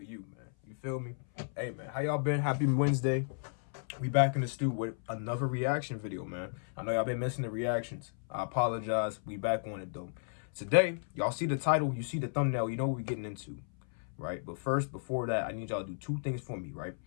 you, man. You feel me? Hey, man, how y'all been? Happy Wednesday. We back in the stew with another reaction video, man. I know y'all been missing the reactions. I apologize. We back on it, though. Today, y'all see the title, you see the thumbnail, you know what we're getting into, right? But first, before that, I need y'all to do two things for me, right?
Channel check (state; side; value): silent; right; 55 dB below the other